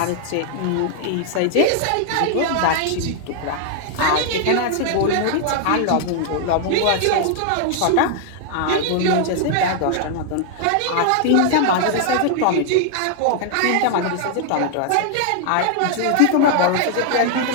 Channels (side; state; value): both; different; correlation 0.00